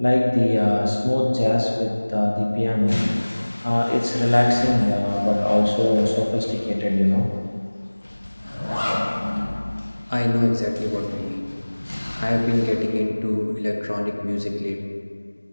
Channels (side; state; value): both; inverted; correlation -1.00